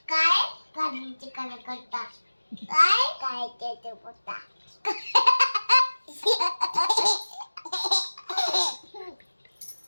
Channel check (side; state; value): both; inverted; correlation -1.00